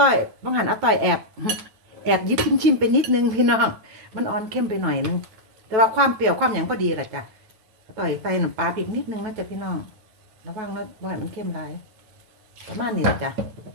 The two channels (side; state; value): left; late; 9.1 ms